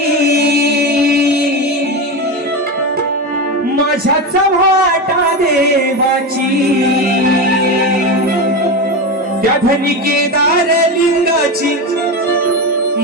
माझ्या चव्हाटा देवाची, त्या धनी केदारलिंगाची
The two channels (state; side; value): normal; both; correlation 0.18